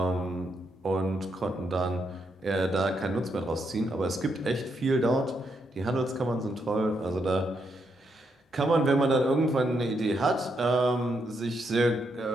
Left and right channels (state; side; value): normal; both; correlation 0.79